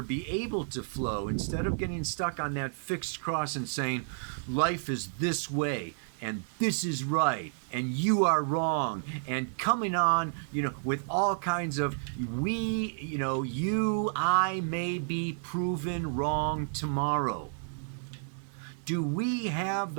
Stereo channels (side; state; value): left; silent; digital silence